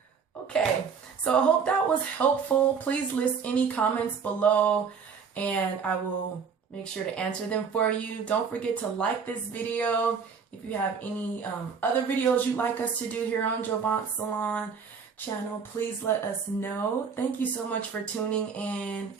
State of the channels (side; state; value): left; quieter; 6.1 dB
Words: Okay, so I hope that was helpful. Please list any comments below and I will make sure to answer them for you. Don't forget to like this video. If you have any other videos you'd like us to do here on Jovance Salon channel, please let us know. Thank you so much for tuning in